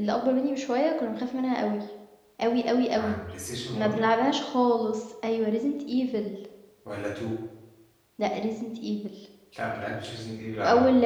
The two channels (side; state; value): both; identical; correlation 1.00